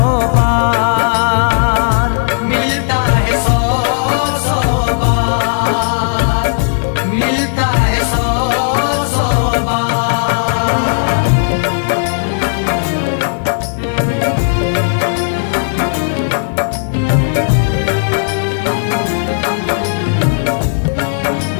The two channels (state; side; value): silent; right; 71 dB below the other